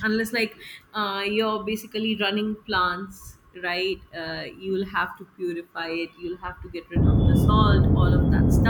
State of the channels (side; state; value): both; identical; correlation 1.00